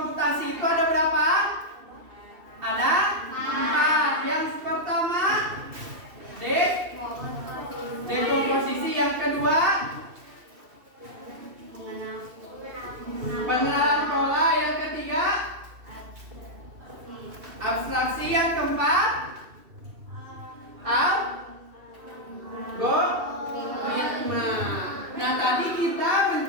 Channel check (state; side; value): late; left; 2.7 ms